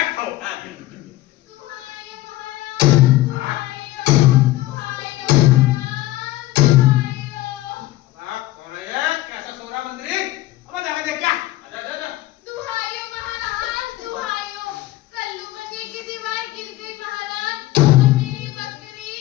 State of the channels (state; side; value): quieter; right; 16.5 dB